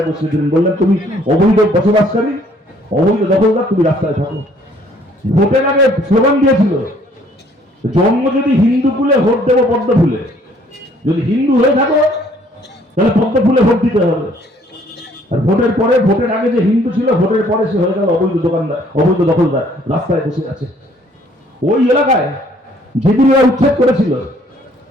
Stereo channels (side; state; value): both; normal; correlation 0.61